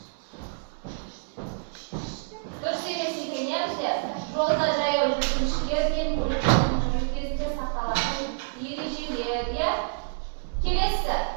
Yolda jayov yurishlardan kezga saqlanadigan erejilar. Kelesi,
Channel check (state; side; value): silent; left; digital silence